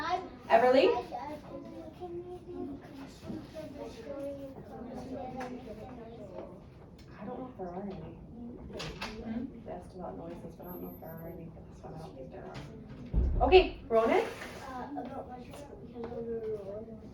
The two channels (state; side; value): identical; both; correlation 1.00